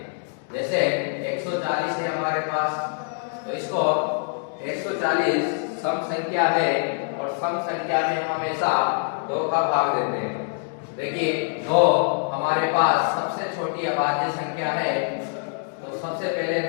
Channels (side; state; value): right; silent; 58 dB below the other